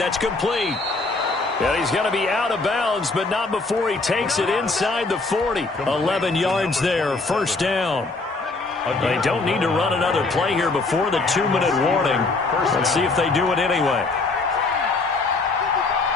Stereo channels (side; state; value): right; quieter; 3.6 dB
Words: complete. And he's going to be out of bounds, but not before he takes it inside the 40. 11 yards there, first down. They don't need to run another play here before the 2-minute warning. Let's see if they do it anyway.